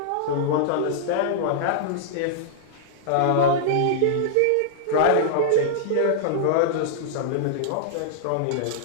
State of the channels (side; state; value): both; different; correlation -0.02